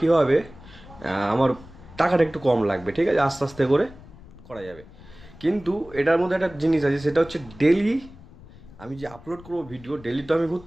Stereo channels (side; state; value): left; noise; rumble, 20 dB below the sound